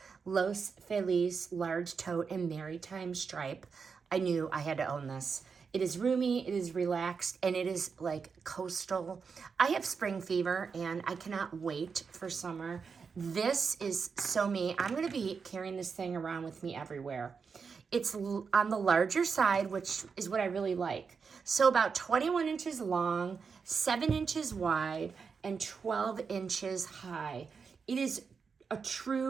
Los Feliz large tote and maritime stripe, I knew I had to own this. It is roomy, it is relaxed, and it is like coastal. I have spring fever and I cannot wait for summer. This is so me. I'm gonna be carrying this thing around with me everywhere. It's on the larger side, which is what I really like. So about 21 inches long, 7 inches wide, and 12 inches high. It is a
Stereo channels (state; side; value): quieter; left; 5.6 dB